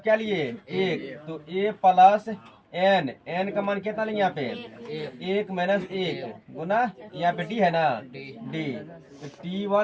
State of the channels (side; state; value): both; identical; correlation 1.00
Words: क्या लिए 1, तो A प्लस एन, एन का मान कितना लेंगे यहाँ पे 1 माइनस 1 गुना यहाँ पे डी है ना डी, तो